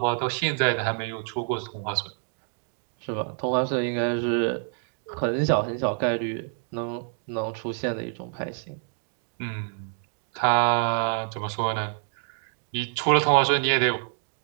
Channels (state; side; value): silent; left; 58 dB below the other